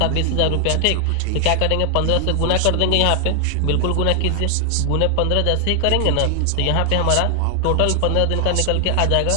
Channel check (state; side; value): different; both; correlation 0.00